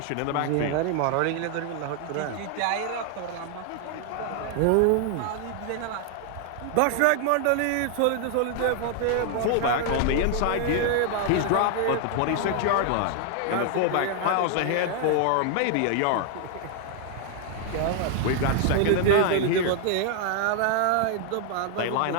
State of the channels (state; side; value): different; both; correlation 0.00